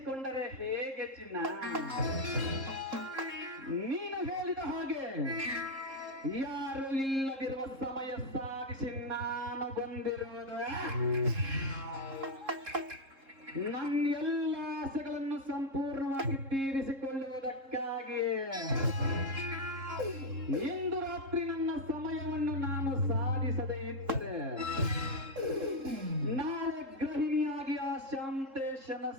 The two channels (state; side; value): late; left; 3.7 ms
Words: ಹೇಗೆ ಚಿನ್ನ? ನೀನು ಹೇಳಿದ ಹಾಗೆ ಯಾರು ಇಲ್ಲದಿರುವ ಸಮಯ ಸಾಧಿಸಿ ನಾನು ಬಂದಿರುವುದು ನನ್ನ ಎಲ್ಲ ಆಸೆಗಳನ್ನು ಸಂಪೂರ್ಣವಾಗಿ ತೀರಿಸಿಕೊಳ್ಳುವುದಕ್ಕಾಗಿ. ಇಂದು ರಾತ್ರಿ ನನ್ನ ಸಮಯವನ್ನು ನಾನು ಸಾಧಿಸದೇ ಇದ್ದರೆ ನಾಳೆ ಗೃಹಿಣಿಯಾಗಿ ಆ ಶಾಂತೇಶನ